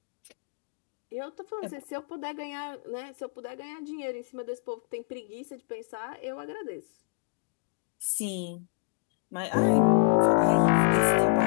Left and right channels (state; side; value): quieter; right; 37.6 dB